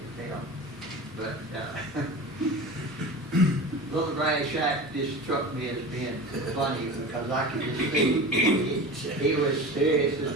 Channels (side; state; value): both; normal; correlation 0.32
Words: tell. But Little Grass Shack just struck me as being funny, because I could just see he was serious